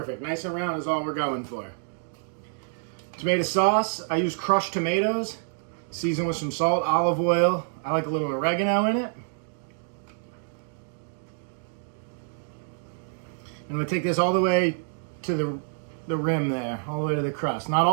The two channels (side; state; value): left; silent; digital silence